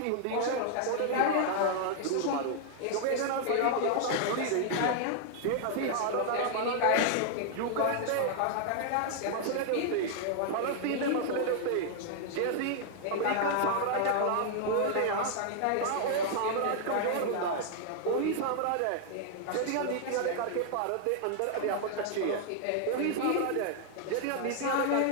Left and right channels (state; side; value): different; both; correlation -0.01